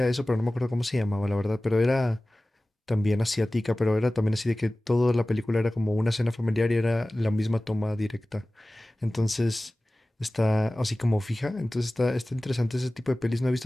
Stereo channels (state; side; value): normal; both; correlation 0.97